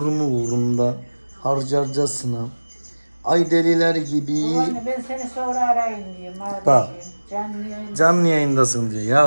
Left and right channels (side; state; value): both; inverted; correlation -1.00